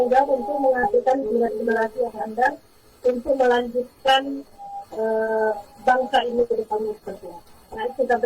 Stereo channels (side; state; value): both; identical; correlation 1.00